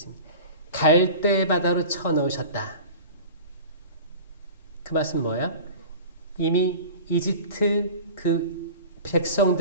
갈대 바다로 쳐넣으셨다. 그 말씀은 뭐예요? 이미 이집트 그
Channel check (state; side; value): inverted; both; correlation -0.37